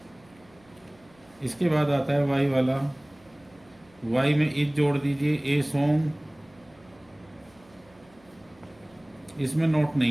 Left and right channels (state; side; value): noise; right; hum, 29 dB below the sound